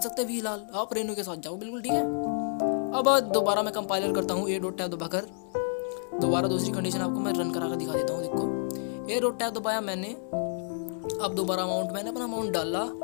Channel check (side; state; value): right; silent; digital silence